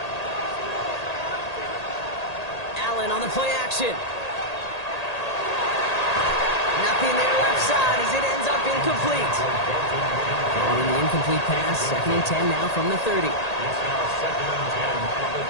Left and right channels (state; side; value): late; right; 1.8 ms